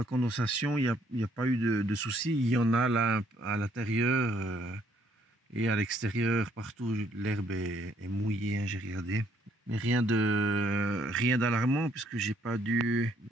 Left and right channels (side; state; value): both; normal; correlation 0.67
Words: condensation, il n'y a pas eu de soucis. Il y en a là à l'intérieur et à l'extérieur, partout. L'herbe est mouillée, hein, j'ai regardé. Mais rien d'alarmant puisque j'ai pas dû